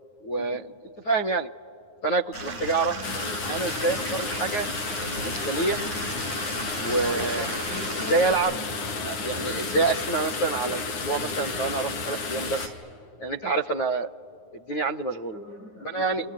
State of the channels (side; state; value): right; late; 9.6 ms